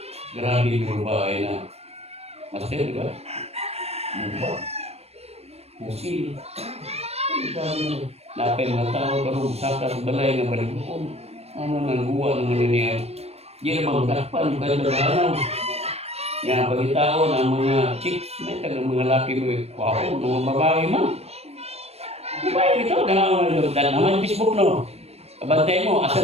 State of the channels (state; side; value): late; left; 0.30 ms